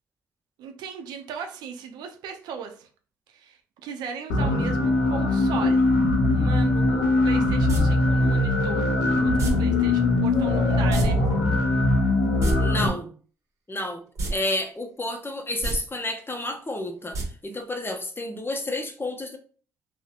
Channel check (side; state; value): both; normal; correlation 0.67